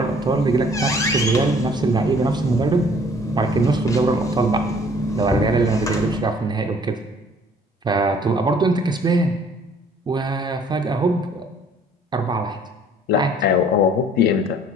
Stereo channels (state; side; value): normal; both; correlation 0.57